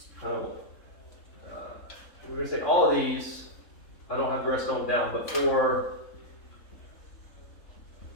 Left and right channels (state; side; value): late; right; 3.7 ms